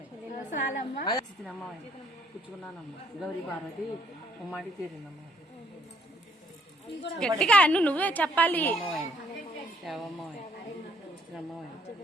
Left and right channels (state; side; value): normal; both; correlation 0.65